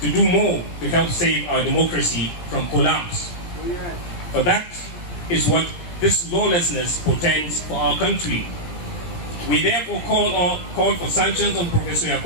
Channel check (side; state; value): right; late; 17 ms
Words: do more to help save our democracy from collapse. For that is what this lawlessness portends for our country. We therefore call for sanctions on Professor